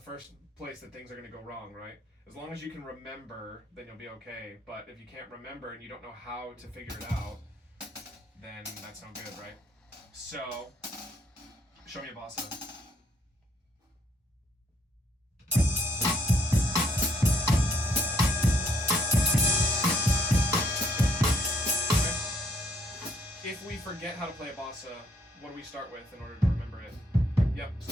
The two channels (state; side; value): normal; both; correlation 0.69